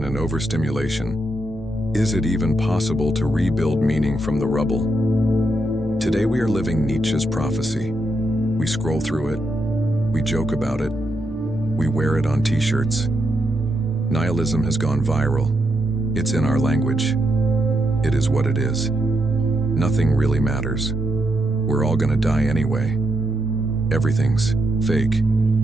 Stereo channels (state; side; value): normal; both; correlation 0.82